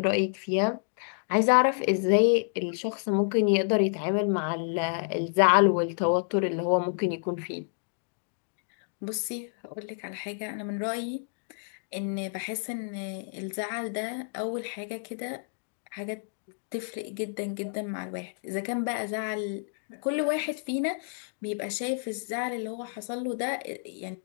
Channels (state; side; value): silent; right; digital silence